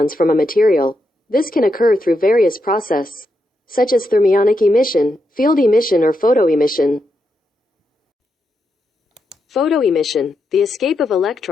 from a material. This can occur through various processes, such as thermionic emission, field emission, or photoemission. Photoemission, the escape of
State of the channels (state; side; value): normal; both; correlation 0.84